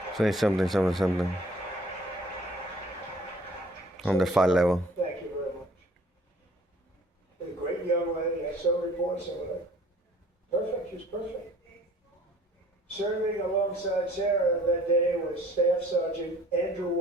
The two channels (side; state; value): both; normal; correlation 0.53